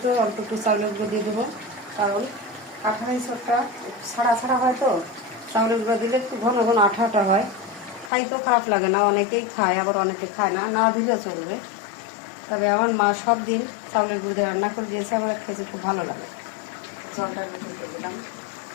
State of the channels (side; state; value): right; drops out; at 8.1 s